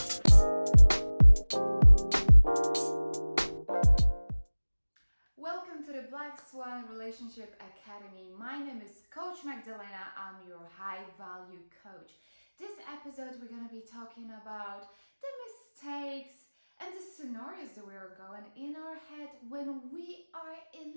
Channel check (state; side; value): inverted; both; correlation -1.00